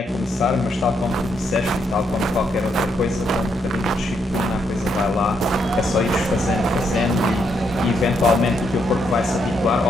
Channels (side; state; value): both; normal; correlation 0.77